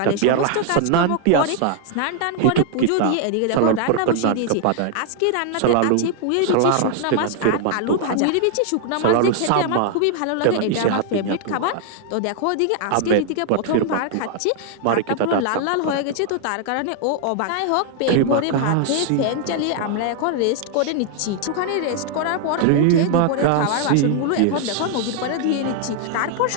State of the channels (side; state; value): both; different; correlation 0.00